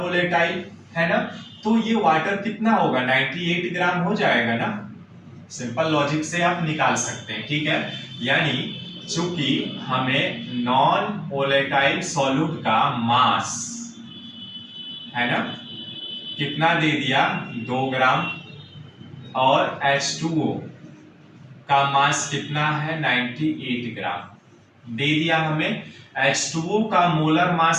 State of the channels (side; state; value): both; identical; correlation 1.00